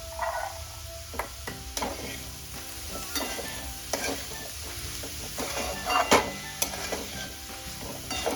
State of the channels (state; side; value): identical; both; correlation 1.00